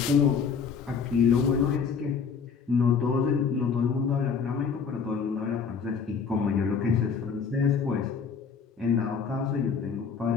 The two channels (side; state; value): right; quieter; 6.0 dB